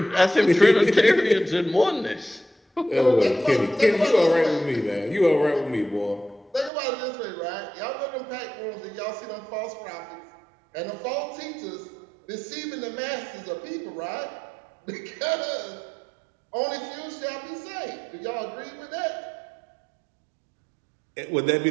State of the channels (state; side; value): drops out; left; at 6.7 s